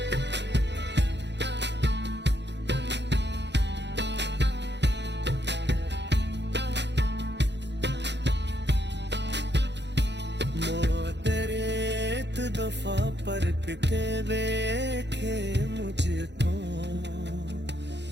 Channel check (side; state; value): left; late; 0.51 ms